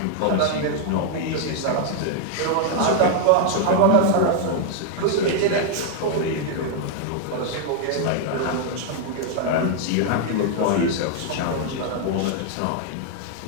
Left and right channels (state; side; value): different; both; correlation 0.00